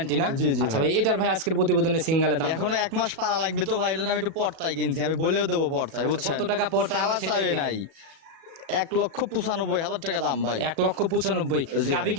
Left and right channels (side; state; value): left; late; 37 ms